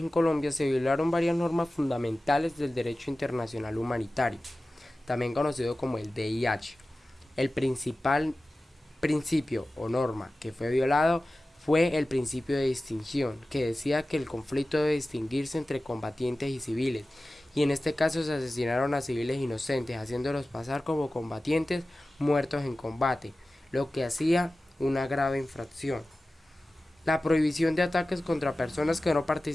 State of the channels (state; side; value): normal; both; correlation 0.96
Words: Colombia se violaron varias normas fundamentales del derecho internacional humanitario, también conocido como el DIH. El principal principio o norma que fue violado fue el principio de distinción, que decía que el conflicto debe distinguirse entre combatientes y civiles, y en este caso se asesinaron a civiles inocentes, haciéndolos pasar como combatientes muertos en combate, lo que hacía una grave infracción. La prohibición de ataques contra personas que no